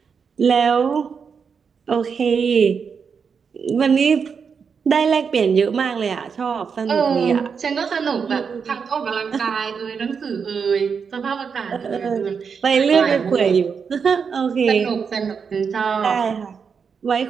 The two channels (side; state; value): left; quieter; 6.1 dB